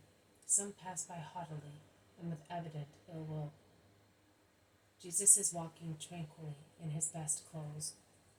some pass by haughtily and with evident ill will. Jesus is walking tranquilly in his best clothes.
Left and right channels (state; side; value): identical; both; correlation 1.00